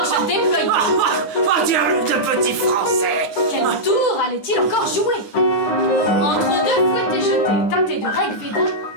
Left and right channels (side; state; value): right; late; 9.6 ms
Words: déployée. Oh Dieu, de petit Français. Quel tour allait-il encore jouer? Entre deux fouettés jetés, teintés de Rig Veda,